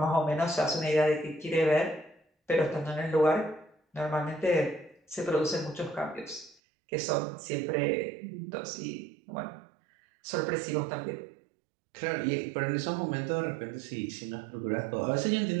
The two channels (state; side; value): drops out; left; at 6.6 s